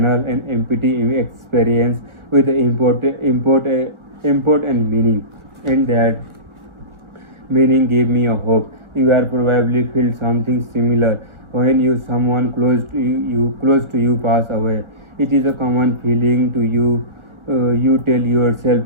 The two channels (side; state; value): left; late; 1.4 ms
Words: and empty experience with import and meaning, and that meaning gave me a hope. You are probably feel something similar when someone close to you pass away. It is a common feeling to you. You tell